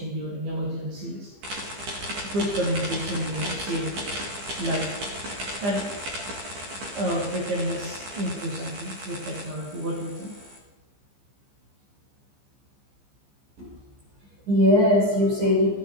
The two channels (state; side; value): late; left; 15 ms